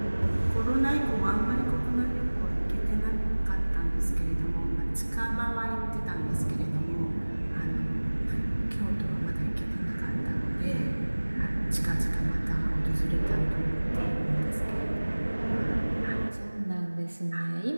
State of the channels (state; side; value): inverted; both; correlation -1.00